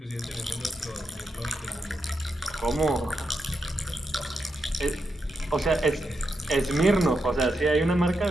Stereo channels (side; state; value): both; normal; correlation 0.85